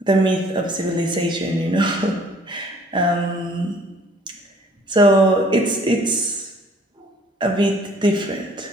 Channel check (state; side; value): normal; both; correlation 0.56